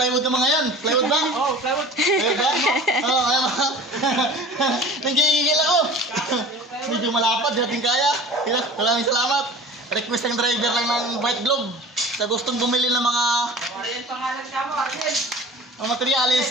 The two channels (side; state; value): both; normal; correlation 0.40